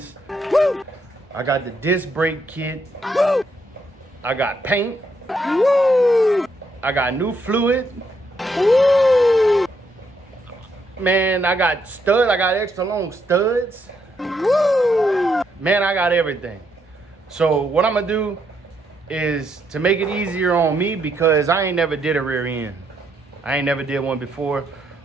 Woo! I got the disc brake kit. Woo! I got paint. Woo! I got new fluid. Woo! Man, I got studs. I got extra long studs. Woo! Man, I got everything. So what I'm gonna do is to make it easier on me, because I ain't never did a rear end. I ain't never did one before.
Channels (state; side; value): normal; both; correlation 0.76